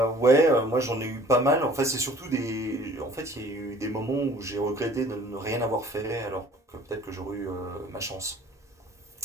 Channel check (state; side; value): normal; both; correlation 0.51